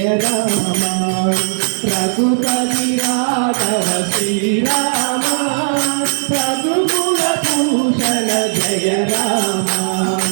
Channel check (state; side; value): silent; left; digital silence